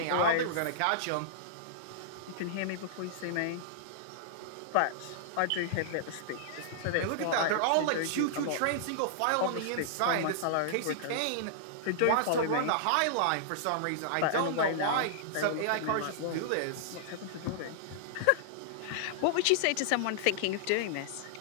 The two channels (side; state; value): both; different; correlation -0.01